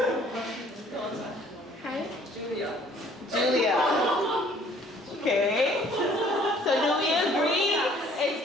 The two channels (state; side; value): normal; both; correlation 0.57